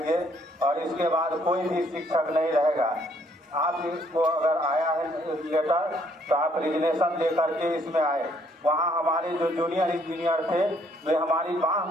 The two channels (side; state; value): both; normal; correlation 0.66